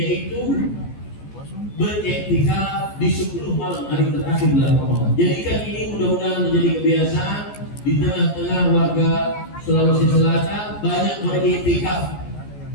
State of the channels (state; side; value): late; right; 14 ms